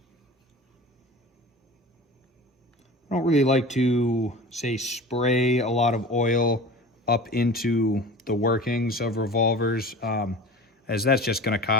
I don't really like to, say, spray a lot of oil up into the workings of revolvers, as that's just going to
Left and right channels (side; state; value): both; normal; correlation 0.38